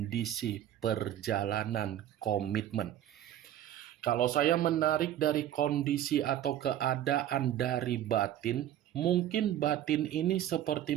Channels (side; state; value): left; quieter; 11.7 dB